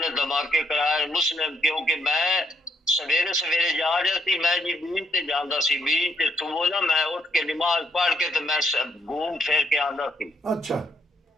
ਧਮਾਕੇ ਕਰਾਏ ਮੁਸਲਿਮ, ਕਿਉਂਕਿ ਮੈਂ ਸਵੇਰੇ ਸਵੇਰੇ ਜਾ ਰਿਹਾ ਸੀ, ਮੈਂ ਜੀ ਬੀਚ ਤੇ ਜਾਂਦਾ ਸੀ, ਬੀਚ ਤੇ ਸੁਬਹ ਨਾ ਮੈਂ ਉੱਠ ਕੇ ਨਮਾਜ਼ ਪੜ੍ਹ ਕੇ ਤੇ ਮੈਂ ਘੂਮ ਫੇਰ ਕੇ ਆਉਂਦਾ ਸੀ। ਅੱਛਾ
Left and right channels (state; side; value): normal; both; correlation 0.74